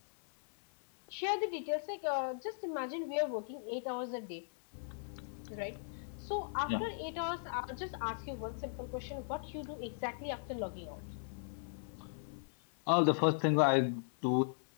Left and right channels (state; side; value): silent; right; 53 dB below the other